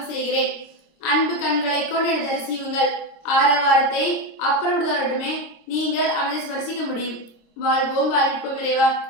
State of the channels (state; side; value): late; right; 26 ms